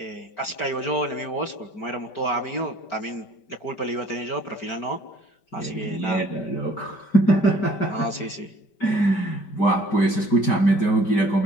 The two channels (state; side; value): late; right; 5.1 ms